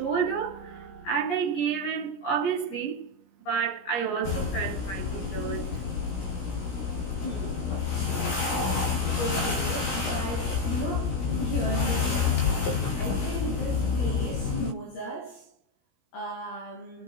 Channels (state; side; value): late; right; 17 ms